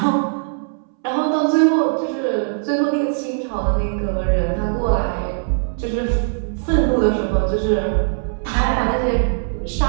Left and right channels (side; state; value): left; silent; 66 dB below the other